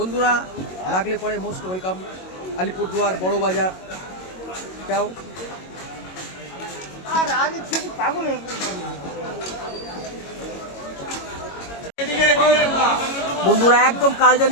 লাগলে পরে মোস্ট ওয়েলকাম আলিপুরদুয়ার বড় বাজার। যাও বন্ধুরা, একদম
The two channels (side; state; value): right; late; 22 ms